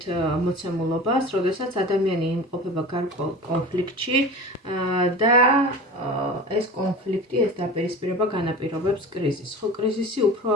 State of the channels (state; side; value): normal; both; correlation 0.35